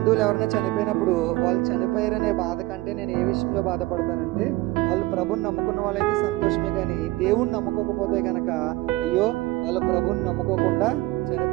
ఎవరైనా చనిపోయినప్పుడు వాళ్ళు చనిపోయారనే బాధ కంటే నేను ఏ విషయంలో బాధపడతానంటే, వాళ్ళు ప్రభుని నమ్ముకున్న వాళ్ళైతే సంతోషమే, కానీ దేవుణ్ణి నమ్ముకోకపోతే కనుక అయ్యో వాళ్ళు ప్రభుని నమ్ముకోకుండా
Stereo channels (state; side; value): quieter; left; 19.4 dB